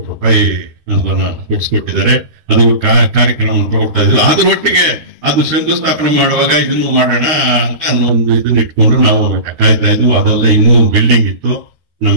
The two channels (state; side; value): late; left; 12 ms